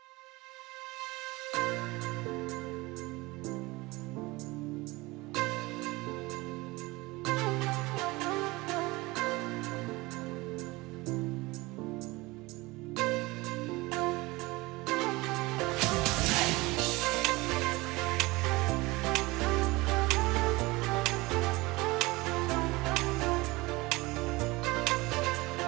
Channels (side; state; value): left; quieter; 22.1 dB